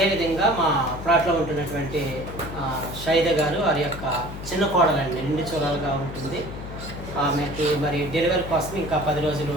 మా ప్లాట్లో ఉంటున్నటువంటి షైద గారు, వారి యొక్క చిన్న కోడలండి, నిండు చూడాలుగా ఉంటుంది. ఆమెకి మరి డెలివరీ కోసం ఇంకా 10 రోజులు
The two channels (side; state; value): left; noise; hum, 10 dB below the sound